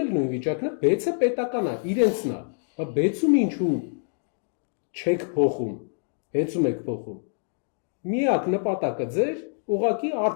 էլ նույն վիճակն է, բեցը պետական է, իրենցն է, բայց բեցում ինչու չեք փոխում, ՀԵՑ-ում եք փոխում։ Միակ նպատակը ձեր ուղղակի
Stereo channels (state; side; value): silent; right; digital silence